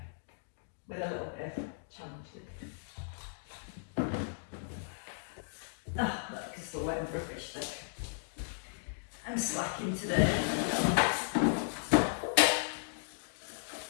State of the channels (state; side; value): silent; right; digital silence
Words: With a little bit of challenge. Oh, look, it's still wet and rubbish, look. I'm slacking today. And